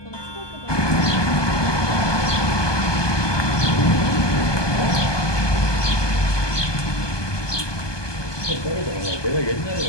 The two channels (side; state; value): right; late; 1.2 ms